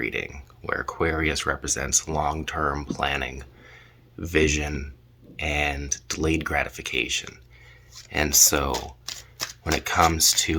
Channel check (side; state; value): both; identical; correlation 1.00